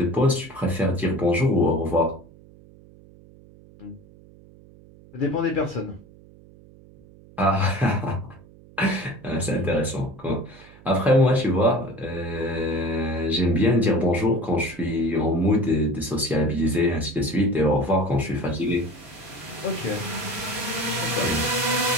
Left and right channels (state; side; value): noise; right; hum, 23 dB below the sound